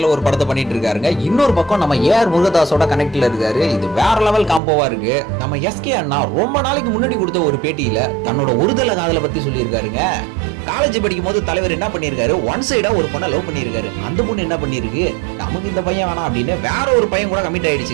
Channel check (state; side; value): drops out; left; at 4.6 s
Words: ஒரு படத்தை பண்ணிட்டு இருக்காருங்க, இன்னொரு பக்கம் நம்ம ஏஆர் முருகதாஸோட கனெக்ட்ல இருக்காரு. இது வேற லெவல் காம்போவா இருக்கு. நம்ம எஸ்கே அண்ணா ரொம்ப நாளைக்கு முன்னாடி கொடுத்த ஒரு பேட்டியில தன்னோட ஒருதலை காதலை பத்தி சொல்லியிருக்காருங்க. காலேஜ் படிக்கும் போது தலைவர் என்ன பண்ணிருக்காரு, ஒன் சைடா ஒரு பொண்ணை லவ் பண்ணிருக்காரு. அந்த பொண்ணு என்ன பண்ணிருக்கு, நமக்கு இந்த பையன் வேணாம் அப்படின்னு வேற ஒரு பையன் கூட கமிட்